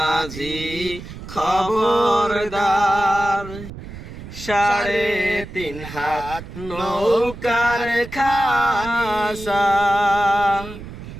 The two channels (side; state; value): right; noise; rumble, 13 dB below the sound